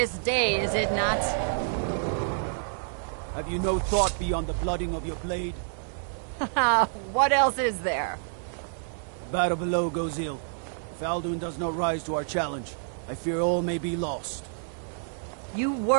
day, is it not? Have you no thought beyond the blooding of your blade? What else is there? The battle below goes ill. If Alduin does not rise to our challenge, I fear all may be lost. You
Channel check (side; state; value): left; silent; 59 dB below the other